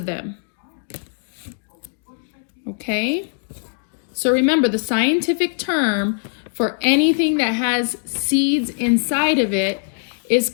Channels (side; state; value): right; silent; 64 dB below the other